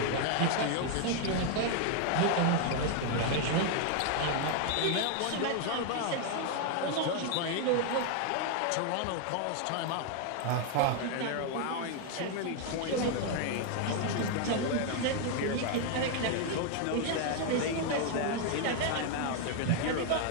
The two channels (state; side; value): different; both; correlation 0.00